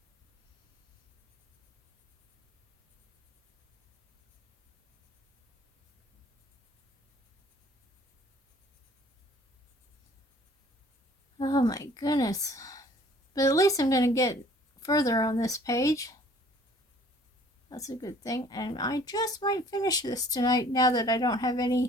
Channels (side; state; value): both; normal; correlation 0.54